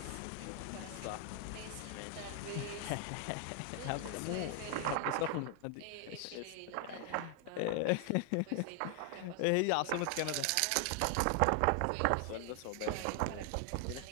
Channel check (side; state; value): both; different; correlation 0.00